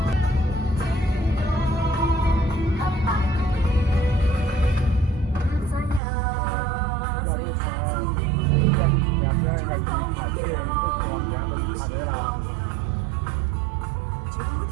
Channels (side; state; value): left; drops out; at 6.0 s